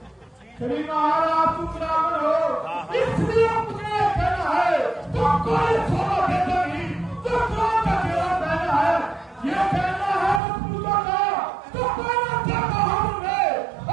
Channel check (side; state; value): left; drops out; at 10.4 s